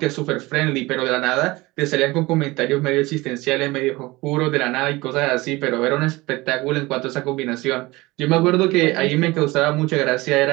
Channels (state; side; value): quieter; left; 21.2 dB